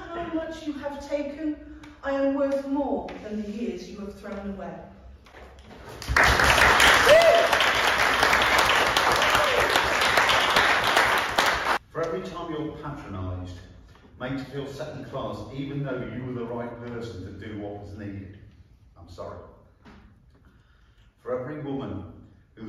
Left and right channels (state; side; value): identical; both; correlation 1.00